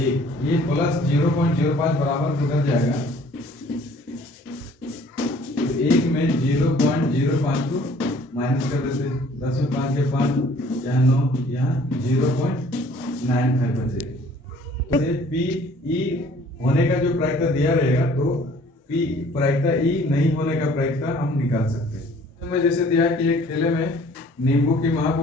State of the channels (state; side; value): normal; both; correlation 0.55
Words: ये प्लस 0.05 बराबर किधर जाएगा, तो 1 में 0.05 को माइनस कर देते, 10 में 5 के 5, यहाँ 9, यहाँ 0.95 बचेगा। पी ई होने का जो प्रायिकता दिया रहेगा तो पी प्रायिकता ई नहीं होने का प्रायिकता हम निकाल सकते हैं। मैं जैसे दिया कि एक थैले में नींबू की महक